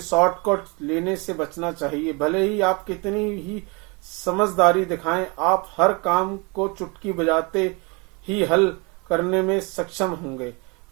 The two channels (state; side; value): quieter; left; 29.6 dB